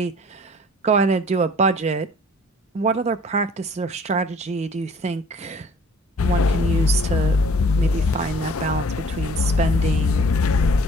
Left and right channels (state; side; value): normal; both; correlation 0.53